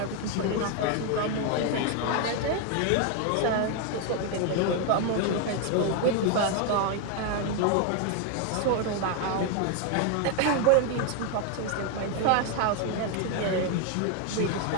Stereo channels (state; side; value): different; both; correlation 0.01